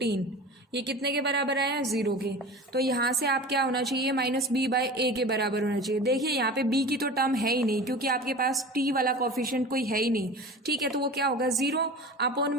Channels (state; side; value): normal; both; correlation 0.35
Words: ये कितने के बराबर आया, जीरो के। तो यहाँ से आप क्या होना चाहिए, माइनस बी बाय ए के बराबर होना चाहिए। देखिए यहाँ पे बी की तो टर्म है ही नहीं, क्योंकि आपके पास टी वाला कोफिशिएंट कोई है ही नहीं। ठीक है, तो वो क्या होगा, जीरो अपॉन